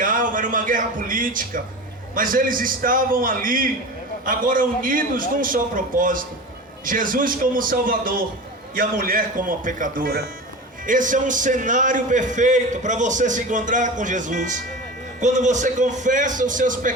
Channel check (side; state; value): both; normal; correlation 0.31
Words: era uma guerra política, mas eles estavam ali, agora unidos num só propósito: Jesus como Salvador e a mulher como a pecadora. Esse é um cenário perfeito para você se encontrar com Jesus. Quando você confessa os seus